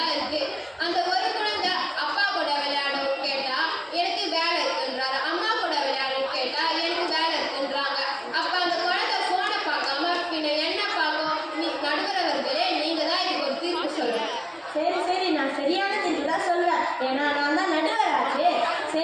இருக்கு. அந்த ஒரு குழந்தை அப்பா கூட விளையாடவும் கேட்டா எனக்கு வேலை இருக்குன்றாரு, அம்மா கூட விளையாடவும் கேட்டா எனக்கு வேலை இருக்குன்றாங்க. அப்போ அந்த குழந்தை ஃபோனை பார்க்காம பின்ன என்ன பார்க்கும்? நடுவரவர்களே நீங்க தான் இதுக்கு ஒரு தீர்ப்பு சொல்லுங்க. சரி, நான் சரியான தீர்ப்பு தான் சொல்றேன். ஏன்னா நான் தான் நடுவராச்சு.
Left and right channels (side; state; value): both; identical; correlation 1.00